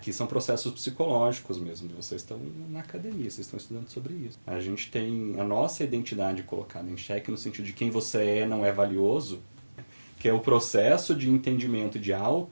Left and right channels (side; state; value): both; inverted; correlation -1.00